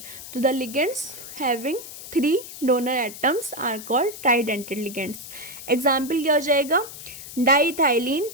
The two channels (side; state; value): left; noise; hiss, 13 dB below the sound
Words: तो the ligands having 3 donor atoms are called tridentate ligands. Example क्या हो जाएगा, डाइथाइलिन